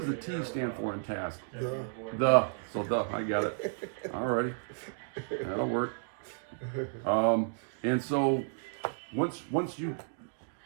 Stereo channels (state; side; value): silent; left; digital silence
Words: the T stand for in task? The I got it. Alrighty, that'll work. And so once you